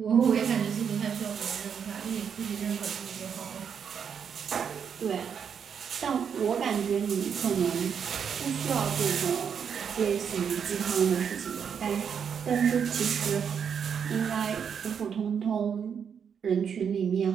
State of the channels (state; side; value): quieter; left; 7.3 dB